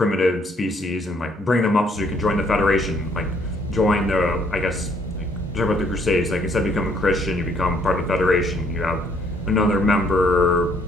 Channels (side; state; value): both; normal; correlation 0.66